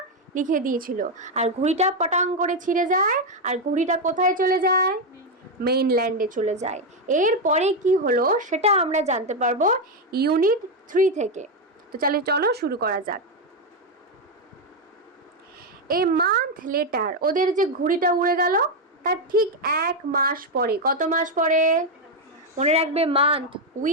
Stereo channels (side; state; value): both; normal; correlation 0.05